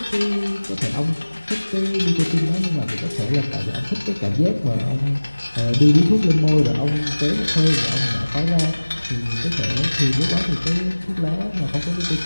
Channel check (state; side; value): inverted; both; correlation -1.00